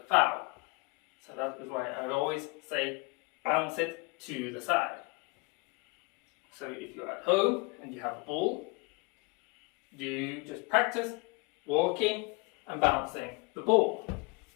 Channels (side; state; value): right; quieter; 28.1 dB